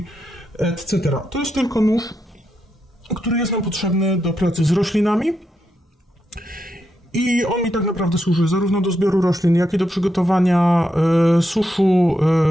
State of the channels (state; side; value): normal; both; correlation 0.83